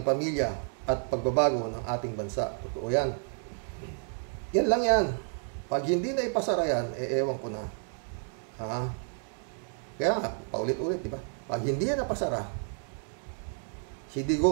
pamilya at pagbabago ng ating bansa. Totoo yan. Yan lang yan. Pag hindi na ipasara yan, ewan ko na. Kaya nga, paulit-ulit, di ba? Pag hindi yan napasara, si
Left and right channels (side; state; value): left; silent; 57 dB below the other